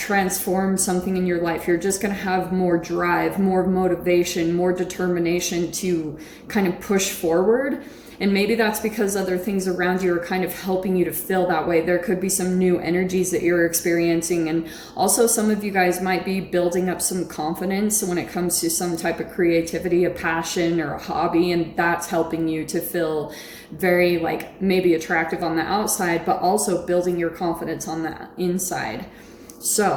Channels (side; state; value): both; identical; correlation 1.00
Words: something in your life. You're just going to have more drive, more motivation, more determination to kind of push forward. And maybe that's because other things around you are kind of helping you to feel that way. There could be some new energies that you're experiencing. And also some of you guys might be building up some confidence when it comes to some type of creativity, a passion or a hobby. And that's helping you to feel very like maybe attractive on the outside, but also building your confidence on the inside.